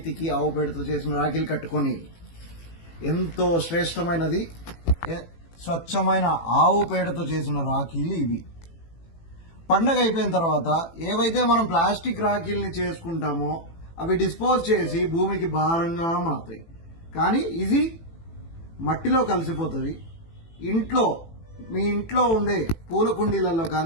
ఆవు పేడతో చేసిన రాఖీలు కట్టుకొని, ఎంతో శ్రేష్టమైనది స్వచ్ఛమైన ఆవు పేడతో చేసిన రాఖీలు ఇవి. పండగ అయిపోయిన తర్వాత ఏవైతే మనం ప్లాస్టిక్ రాఖీల్ని చేసుకుంటామో అవి డిస్పోజ్ చేసి భూమికి భారంగా మారుతాయి. కానీ ఇది మట్టిలో కలిసిపోతుంది. మీ ఇంట్లో ఉండే పూల కుండీలలో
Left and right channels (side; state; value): right; late; 18 ms